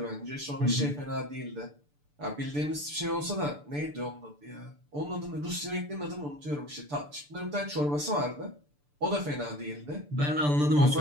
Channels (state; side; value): late; left; 6.8 ms